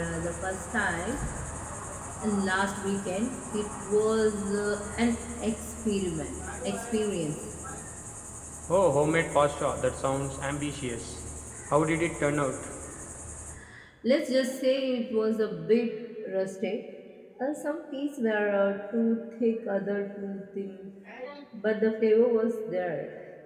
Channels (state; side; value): identical; both; correlation 1.00